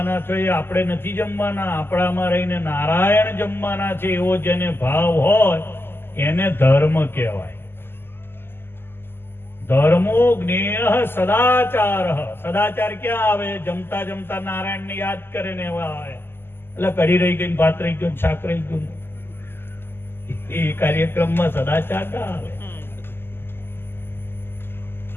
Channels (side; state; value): right; late; 0.11 ms